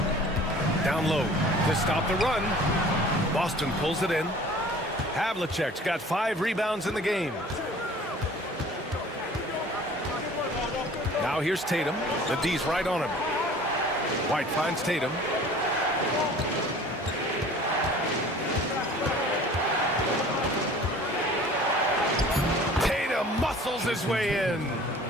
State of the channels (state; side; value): normal; both; correlation 0.47